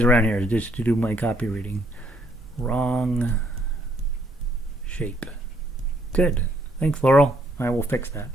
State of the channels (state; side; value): normal; both; correlation 0.69